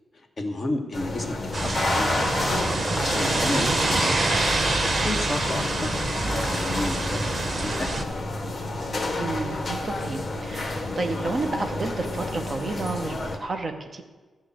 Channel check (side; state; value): both; normal; correlation 0.87